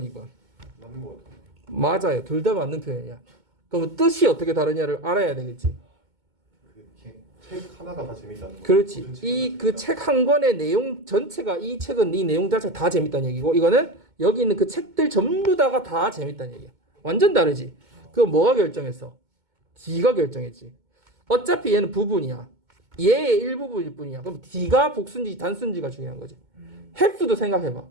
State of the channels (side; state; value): left; late; 2.2 ms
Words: 2번. 맞는 거 같아. 맞아요, 둘 다 맞는 표현이야. 그럼 뜻이 어떻게 다르냐를 알아야 되겠지. 책 하나가 다 재밌다는 거. 그렇지. 이 그 책 한 권의 내용 전체가 이 책은 이 내용 자체가 다 재밌다는 얘기고 이거는 여기 있는 그 책들 전부 다가 다 재밌다는 얘기야. 완전 다르지. 그거 뭐가 결정했어? D가 결정했지. 어차피 얘는 부분이야. 얘의 일부분일 뿐이야. 그럼 D가 복수인지 단수인지가 중요한 거지. have도 생각해봐.